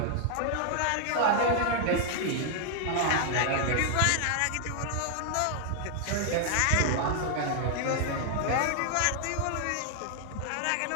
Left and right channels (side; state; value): both; different; correlation 0.00